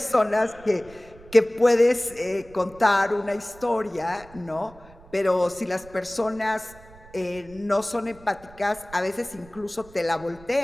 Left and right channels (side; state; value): right; noise; rumble, 22 dB below the sound